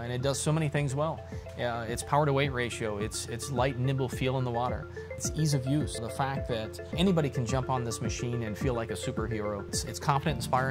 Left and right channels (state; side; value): identical; both; correlation 1.00